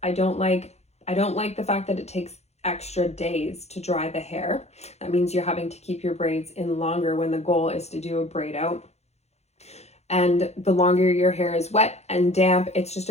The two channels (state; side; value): late; right; 0.31 ms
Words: I don't like the fact that it takes extra days to dry the hair. That means you're having to keep your braids in longer when the goal is to do a braid out. And the longer your hair is wet and damp, it's just